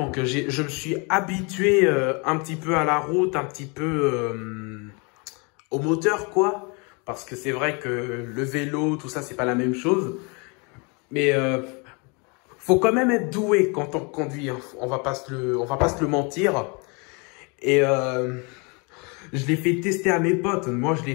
je me suis habitué un petit peu à la route, un petit peu au moteur, quoi. Parce que c'est vrai que le vélo, tout ça, c'est pas la même chose. Mais faut quand même être doué quand on conduit, hein. On va pas se le mentir. Et je l'ai fait tester à mes potes. Moi, je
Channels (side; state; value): right; quieter; 31.7 dB